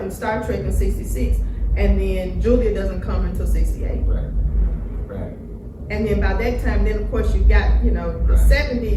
in Star Trek in 66, and then Julia doesn't come until 68. Right. And then by that time, then of course you got, you know, the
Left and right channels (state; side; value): identical; both; correlation 1.00